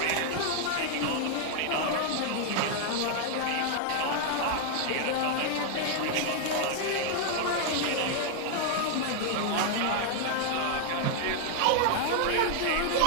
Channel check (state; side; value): different; both; correlation 0.00